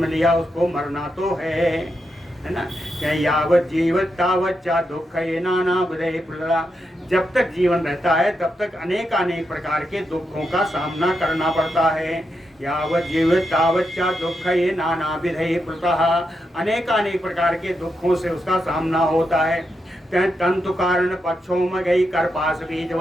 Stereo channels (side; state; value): both; normal; correlation 0.84